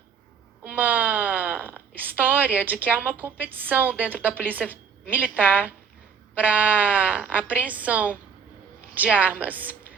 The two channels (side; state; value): left; quieter; 6.4 dB